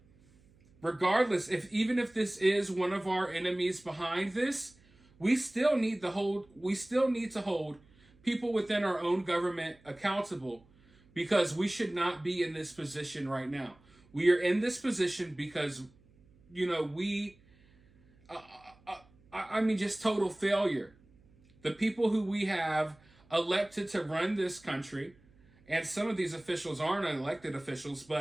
regardless, even if this is one of our enemies behind this, we still need to hold people within our own government accountable, because we should not be in this position right now. We are in this position because, just total failure. The people who we have elected to run this country, and some of these officials aren't elected officials,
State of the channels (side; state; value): right; noise; hum, 29 dB below the sound